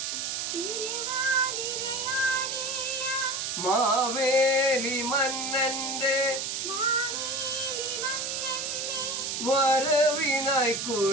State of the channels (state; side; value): noise; right; hiss, 2 dB below the sound